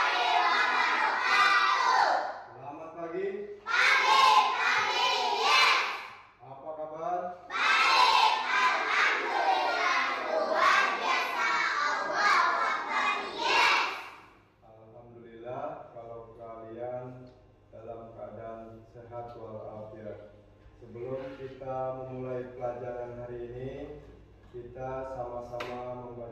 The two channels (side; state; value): both; identical; correlation 1.00